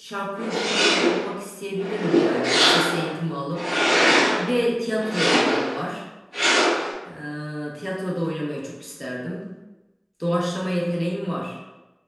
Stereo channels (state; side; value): identical; both; correlation 1.00